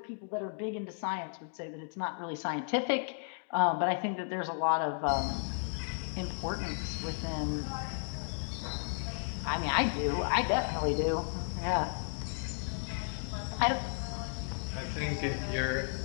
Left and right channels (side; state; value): right; silent; digital silence